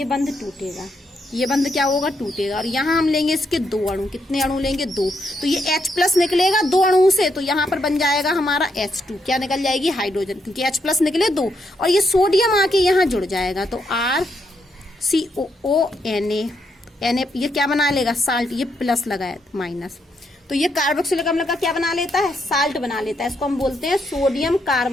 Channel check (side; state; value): both; normal; correlation 0.78